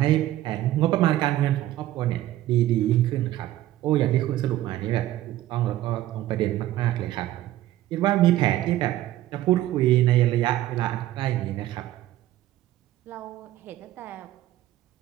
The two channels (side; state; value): left; quieter; 14.3 dB